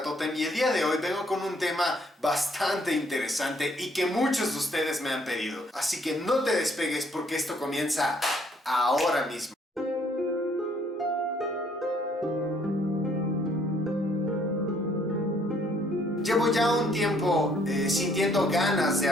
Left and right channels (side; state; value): both; normal; correlation 0.65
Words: Totem y el día de hoy vengo con un tema bastante interesante y que muchos de ustedes me han pedido. Así que no te despegues porque esto comienza ahora mismo. Llevo ya un tiempo sintiendo ganas de